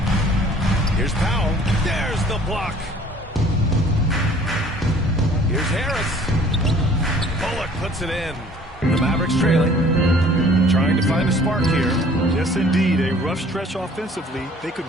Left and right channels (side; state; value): both; normal; correlation 0.53